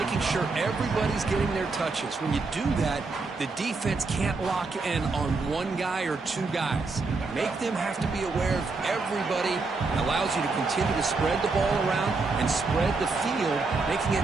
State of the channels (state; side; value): quieter; left; 3.9 dB